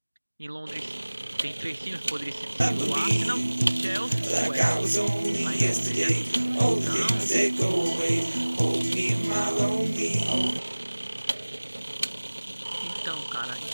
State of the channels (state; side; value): inverted; both; correlation -1.00